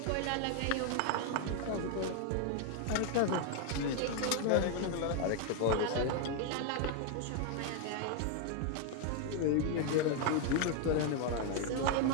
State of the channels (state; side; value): different; both; correlation 0.00